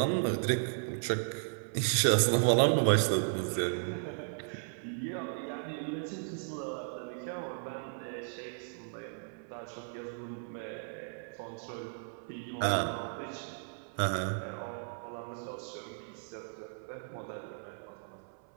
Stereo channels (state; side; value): silent; left; 54 dB below the other